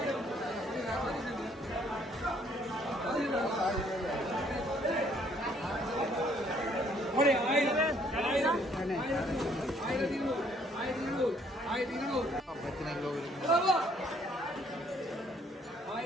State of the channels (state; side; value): normal; both; correlation 0.64